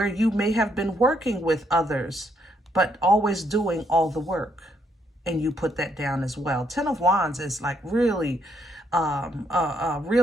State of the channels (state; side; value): normal; both; correlation 0.73